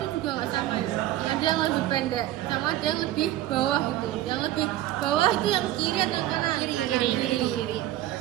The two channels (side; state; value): left; quieter; 14.5 dB